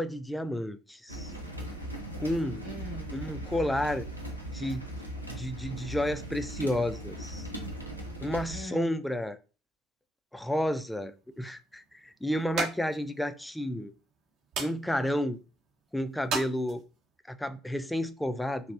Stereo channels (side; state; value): both; normal; correlation 0.81